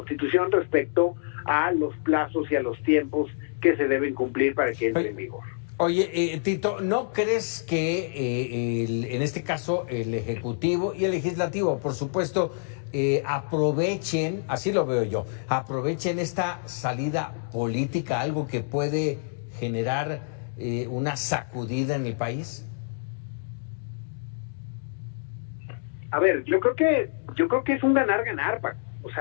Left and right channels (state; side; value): silent; right; digital silence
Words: respecto a los plazos y a los tiempos que se deben cumplir para que entre en vigor. Oye, Tito, ¿no crees que en este caso el Ejecutivo y el Legislativo, por supuesto, aprovechen, así lo veo yo, aprovechen esta salida política, algo que puede generar una sacudida en el país? A ver, yo creo que es un ganar-ganar, Paco. O